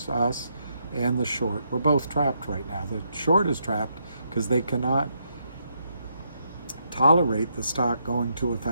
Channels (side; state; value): both; inverted; correlation -0.77